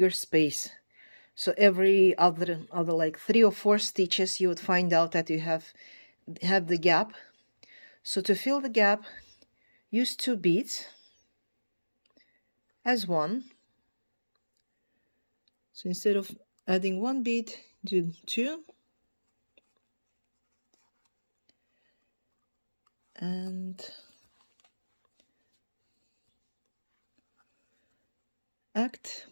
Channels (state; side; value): inverted; both; correlation -1.00